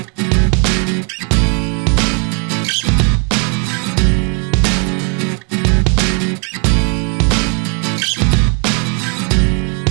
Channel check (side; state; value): left; quieter; 37.8 dB